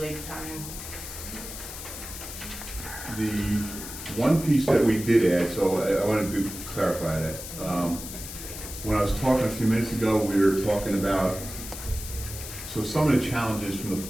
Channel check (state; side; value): noise; left; hiss, 10 dB below the sound